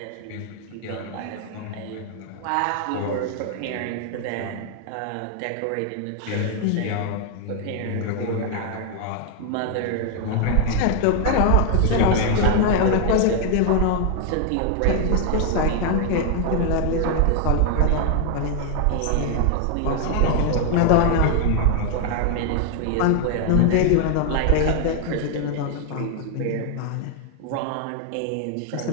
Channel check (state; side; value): different; both; correlation 0.00